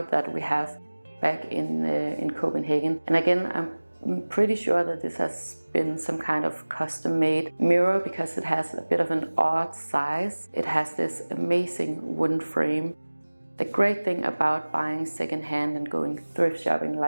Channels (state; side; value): inverted; both; correlation -1.00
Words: that we have back in Copenhagen. And again, I'm pretty sure that this has been some kind of custom-made mirror because it has a bit of an odd size. It has this amazing wooden frame. The great thing about buying secondhand and going thrift shopping